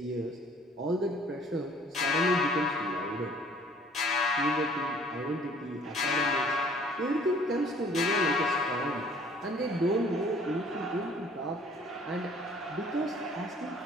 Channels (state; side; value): normal; both; correlation 0.55